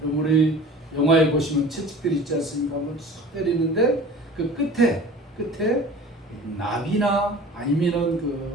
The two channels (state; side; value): normal; both; correlation 0.41